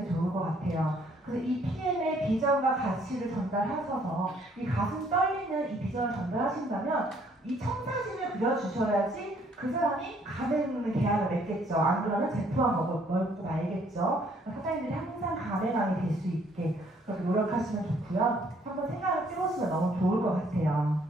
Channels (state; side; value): normal; both; correlation 0.64